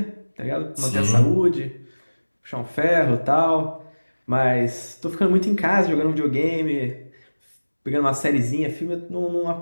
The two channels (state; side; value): inverted; both; correlation -1.00